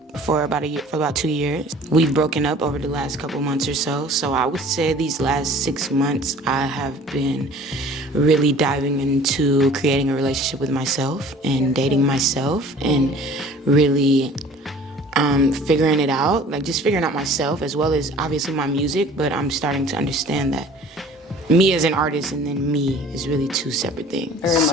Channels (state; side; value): normal; both; correlation 0.48